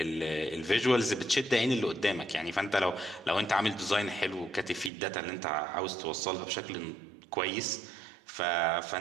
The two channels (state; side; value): drops out; left; at 4.9 s